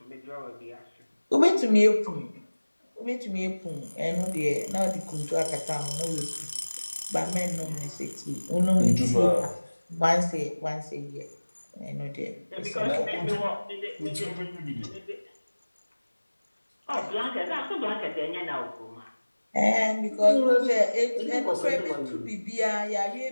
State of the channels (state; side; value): inverted; both; correlation -1.00